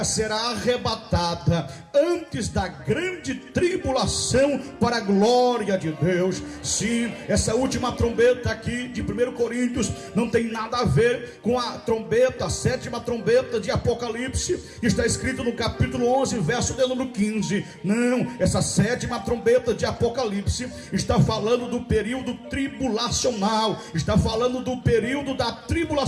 será arrebatada antes da grande tribulação para a glória de Deus. Sim, essa última trombeta aqui de 1 Coríntios não tem nada a ver com a trombeta, a sétima trombeta de Apocalipse, que está escrito no capítulo 11, verso de número 15. Não, essa sétima trombeta de Apocalipse está falando do período tribulacional, está falando do período da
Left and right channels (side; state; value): both; identical; correlation 1.00